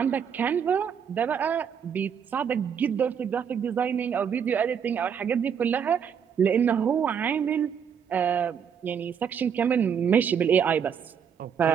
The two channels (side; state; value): left; quieter; 7.5 dB